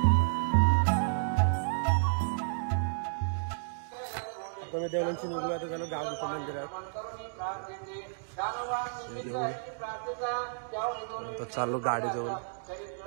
देवळांची निघलो आता झालं गावच्या मंदिरात. चाललो गाडी जवळ.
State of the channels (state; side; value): silent; left; digital silence